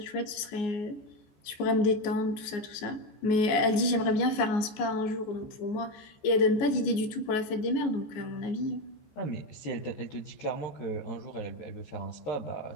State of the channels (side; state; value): right; late; 14 ms